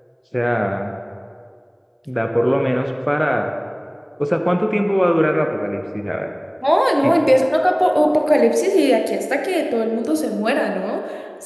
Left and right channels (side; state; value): both; identical; correlation 1.00